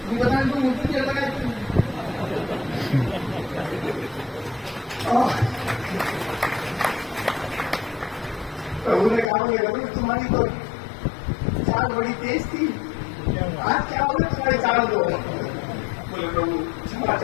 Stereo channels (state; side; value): drops out; right; at 9.2 s